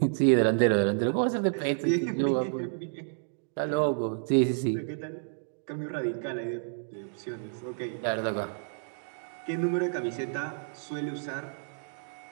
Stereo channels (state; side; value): silent; left; digital silence